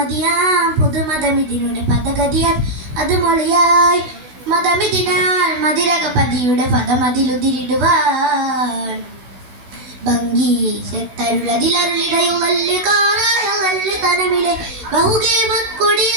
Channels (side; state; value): left; late; 16 ms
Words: പുതുമതമിതിനുടെ പദഗതിയാൽ അത് മൊളിയായി മതമിതിനാൽ മതിരകപതിയുടെ പദമതിലുതിരിടുവാൻ ഭംഗീശത്തരുളതിലരുളിടയുളല് കാറായുളല് തനമിലെ